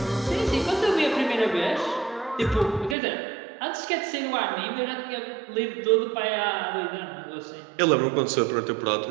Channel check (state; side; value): drops out; left; at 3.0 s